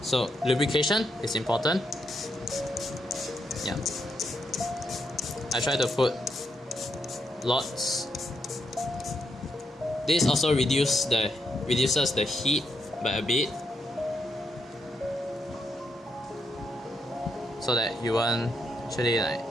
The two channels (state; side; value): normal; both; correlation 0.80